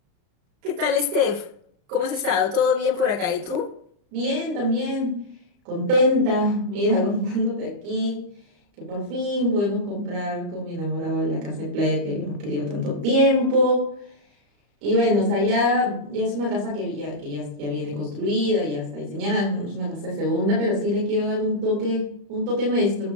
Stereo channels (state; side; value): late; left; 34 ms